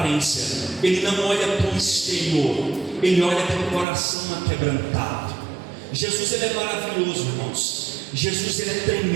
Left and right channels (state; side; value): drops out; left; at 3.9 s